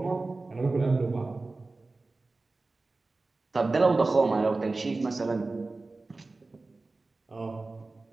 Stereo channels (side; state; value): left; quieter; 3.4 dB